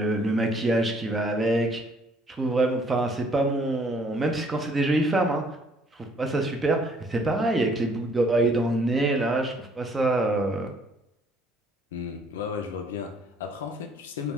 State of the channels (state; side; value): normal; both; correlation 0.62